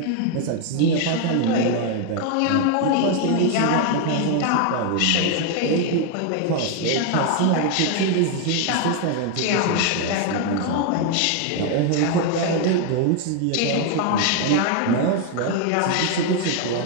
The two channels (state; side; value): different; both; correlation 0.01